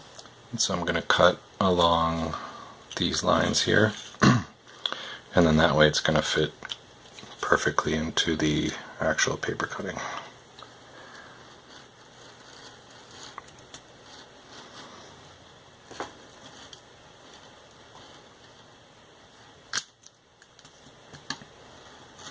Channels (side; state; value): both; identical; correlation 1.00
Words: And so I'm going to cut along these lines here, and then that way it's going to fit perfectly into the actual paper cutting.